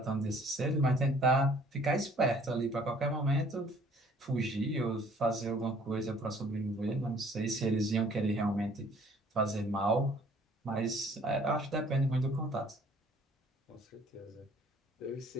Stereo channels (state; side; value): normal; both; correlation 0.57